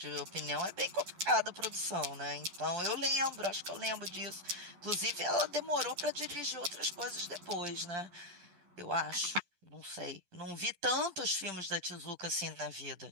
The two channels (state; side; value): late; left; 12 ms